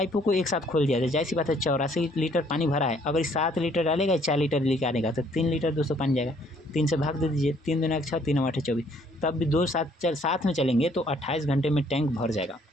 को एक साथ खोल दिया जाए, जाहिर सी बात है 84 लीटर पानी भरा है, अगर 7 लीटर डालेगा 4 लीटर लेके आनेगा, तो 3 लीटर दोस्तों पानी जाएगा। 3 से भाग दे दीजिए, 3 दूना 6, 3 8 24, तब भी 2 साथ में चलेंगे तो 28 घंटे में टैंक भर जाएगा।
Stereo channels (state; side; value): normal; both; correlation 0.63